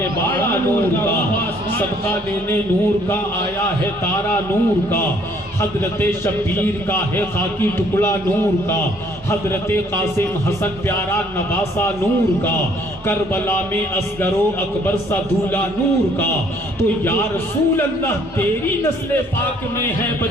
باڑا نور کا، صدقہ لینے نور کا آیا ہے تارا نور کا، حضرت شبیر کا ہے خاکی ٹکڑا نور کا، حضرت قاسم حسن پیارا نواسا نور کا، کربلا میں اصغر و اکبر سا دولہ نور کا، تو یا رسول اللہ تیری نسل پاک میں ہے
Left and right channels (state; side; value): normal; both; correlation 0.62